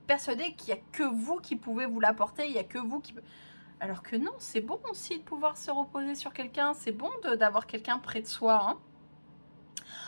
persuadé qu'il n'y a que vous qui pouvez vous l'apporter, il n'y a que vous qui... Alors que non, c'est bon aussi de pouvoir se reposer sur quelqu'un, c'est bon d'avoir quelqu'un près de soi. Hein.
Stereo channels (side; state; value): both; inverted; correlation -1.00